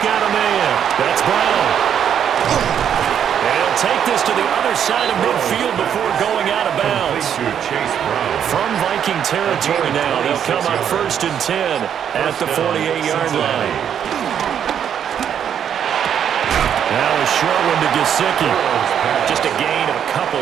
got a man. That's Brown. And he'll take this to the other side of midfield before going out of bounds. From Viking territory now, they'll come up 1st and 10 at the 48-yard line. Now a short one to Gesicki. Just a gain of a couple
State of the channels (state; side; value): quieter; left; 8.8 dB